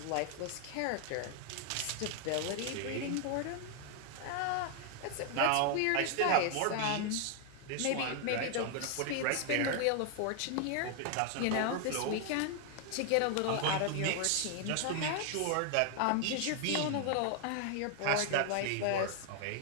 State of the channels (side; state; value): both; different; correlation 0.00